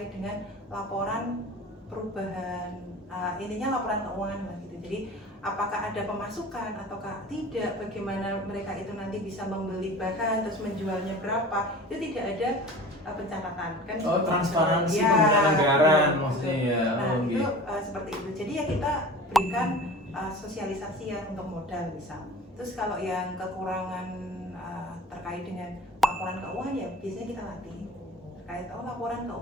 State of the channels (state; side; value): normal; both; correlation 0.38